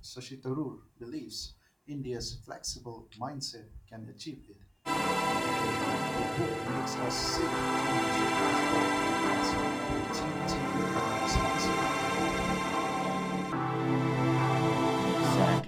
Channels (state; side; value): identical; both; correlation 1.00